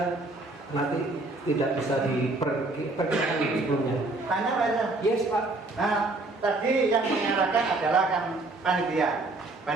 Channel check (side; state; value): left; quieter; 3.1 dB